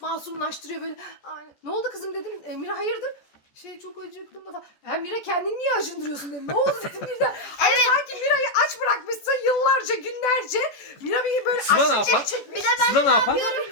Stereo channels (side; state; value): right; late; 14 ms